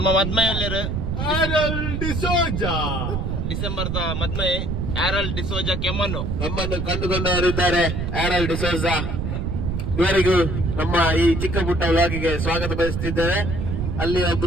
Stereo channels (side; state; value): right; noise; rumble, 2 dB below the sound